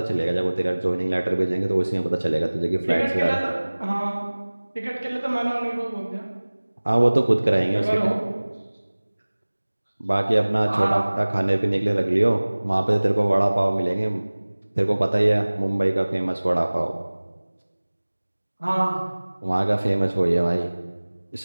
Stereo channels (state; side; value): inverted; both; correlation -1.00